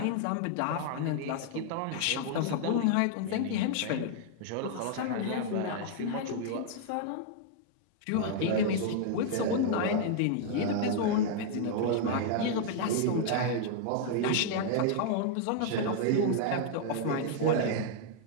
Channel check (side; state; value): both; different; correlation 0.00